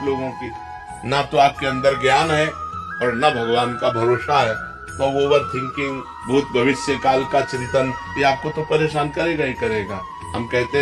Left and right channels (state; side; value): identical; both; correlation 1.00